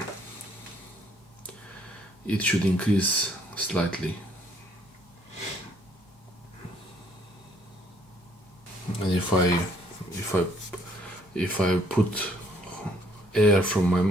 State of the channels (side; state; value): both; normal; correlation 0.65